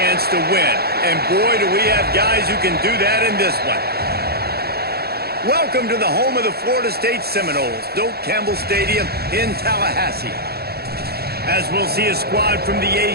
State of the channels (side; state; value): left; late; 0.46 ms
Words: to win. And boy, do we have guys who can do that in this one. Welcome to the home of the Florida State Seminoles, Doak Campbell Stadium in Tallahassee. As we'll see a squad from the